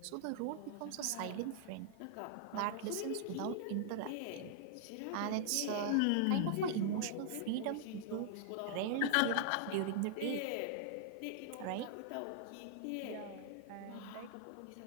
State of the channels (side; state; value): both; different; correlation -0.01